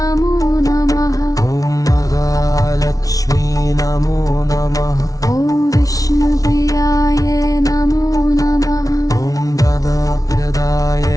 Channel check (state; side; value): late; right; 0.18 ms